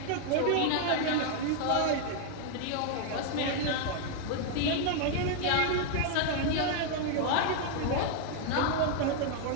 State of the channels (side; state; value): both; different; correlation 0.00